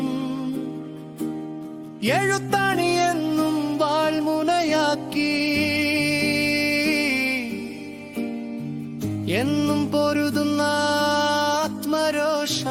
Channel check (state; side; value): identical; both; correlation 1.00